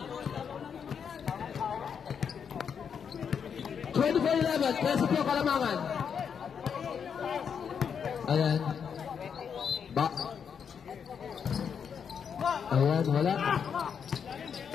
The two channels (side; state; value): right; quieter; 7.1 dB